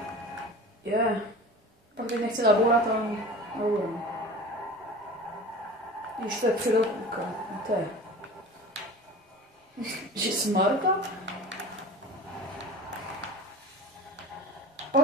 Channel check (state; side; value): normal; both; correlation 0.37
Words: pak teď nechci zabourat, ale nebudu. Když to je předopůka, to je. Že smarta?